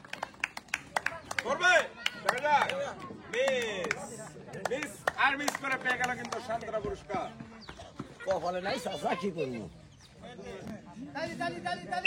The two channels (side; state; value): both; identical; correlation 1.00